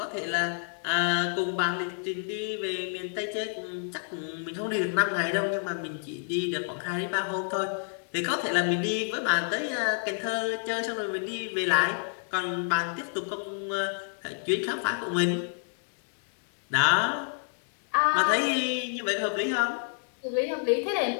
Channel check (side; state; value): right; silent; digital silence